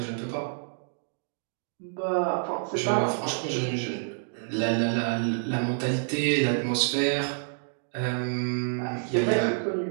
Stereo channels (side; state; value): left; silent; digital silence